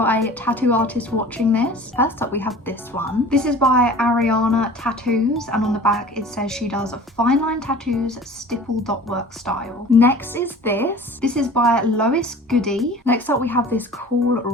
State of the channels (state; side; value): normal; both; correlation 0.43